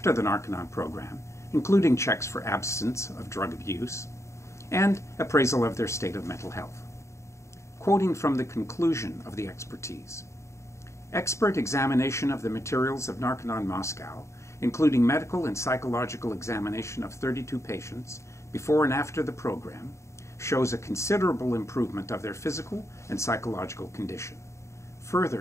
the Narconon program, including checks for absence of drug abuse, and appraisal of their state of mental health. Quoting from the conclusion of the expertise, expert examination of the materials of Narconon Moscow, including medical and psychological examination of 32 patients before and after the program, shows a considerable improvement of their physical and psychological condition.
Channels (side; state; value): right; late; 0.14 ms